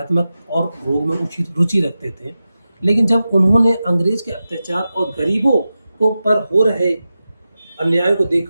और योग में रुचि रखते थे, लेकिन जब उन्होंने अंग्रेज के अत्याचार और गरीबों को पर हो रहे अन्याय को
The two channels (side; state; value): both; inverted; correlation -0.93